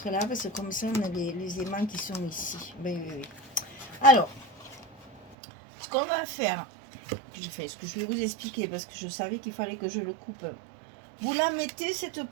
là parce que comme ça, on a les aimants qui sont ici. Ben, oui, oui. Alors, ce qu'on va faire, je fais ce que je vais vous expliquer parce que je savais qu'il fallait que je le coupe. Vous la mettez, cette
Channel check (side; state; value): left; drops out; at 5.4 s